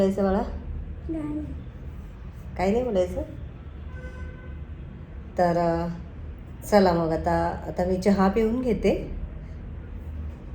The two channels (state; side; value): identical; both; correlation 1.00